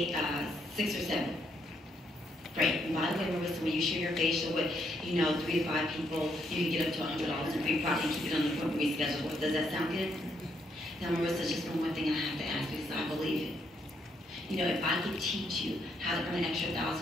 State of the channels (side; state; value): both; normal; correlation 0.75